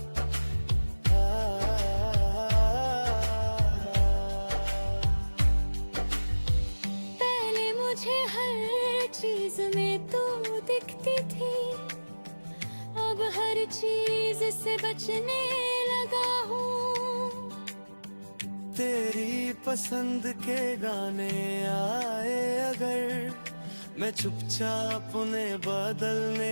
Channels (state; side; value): inverted; both; correlation -1.00